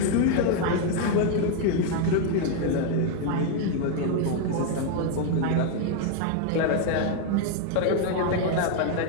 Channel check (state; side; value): different; both; correlation 0.00